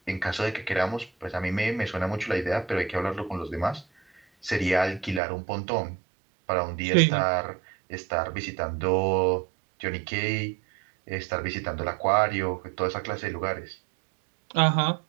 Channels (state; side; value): drops out; left; at 5.2 s